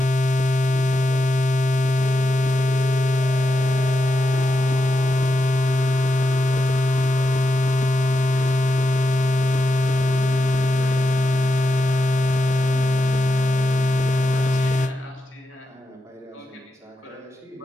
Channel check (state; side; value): normal; both; correlation 0.86